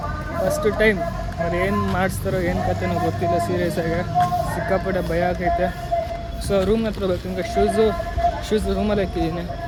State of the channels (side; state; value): both; identical; correlation 1.00